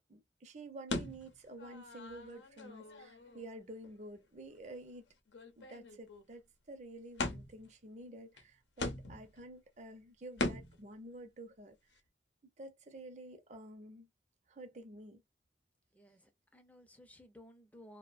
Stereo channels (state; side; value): normal; both; correlation 0.36